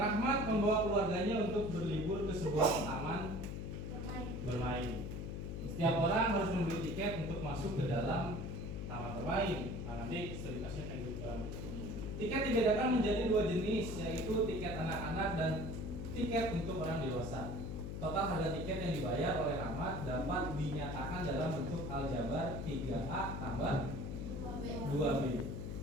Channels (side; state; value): left; noise; hum, 5 dB below the sound